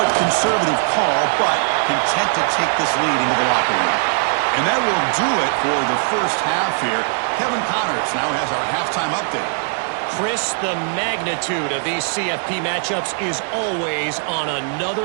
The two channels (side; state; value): left; silent; digital silence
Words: conservative call, but content to take this lead into the locker room. And that will do it for the first half here. Kevin Connors now has our halftime update. Chris, the magnitude of these CFP matchups is always on